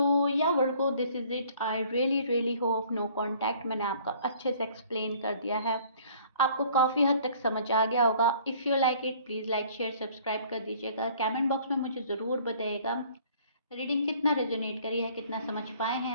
या Virgo, this is it. I really really hope no contact मैंने आपका अच्छे से एक्सप्लेन कर दिया है, आपको काफ़ी हद तक समझ आ गया होगा। If you like it please like share subscribe कर दीजिएगा, कमेंट बॉक्स में मुझे ज़रूर बताइएगा रीडिंग कितना रेजोनेट करी है, कितना समझ पाए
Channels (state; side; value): inverted; both; correlation -0.55